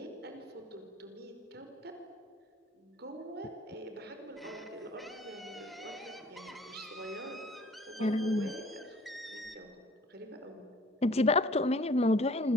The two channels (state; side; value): normal; both; correlation 0.54